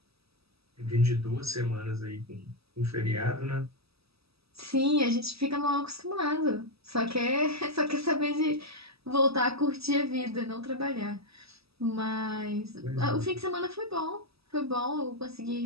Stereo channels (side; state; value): left; late; 0.77 ms